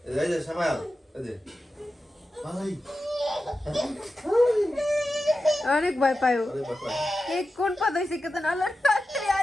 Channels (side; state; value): both; normal; correlation 0.92